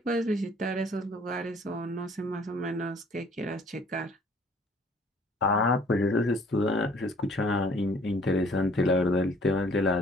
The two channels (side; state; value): both; normal; correlation 0.57